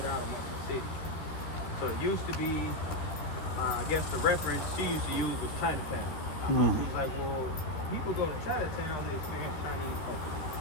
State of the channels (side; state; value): right; late; 11 ms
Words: out amongst the city. So it used to be, I guess the reference she used to use was Chinatown. She was like, well, people go to Chinatown to experience Chinese culture.